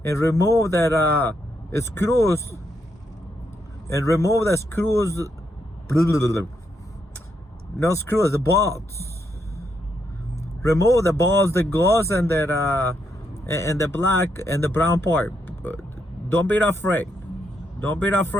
and remove that screws, and remove the screws. No screws, the bolts. Remove the bolts that goes in that and the black and the brown part. Don't be afraid. Don't be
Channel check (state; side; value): normal; both; correlation 0.79